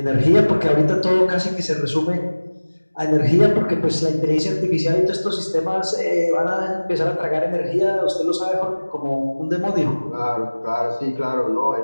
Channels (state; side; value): inverted; both; correlation -1.00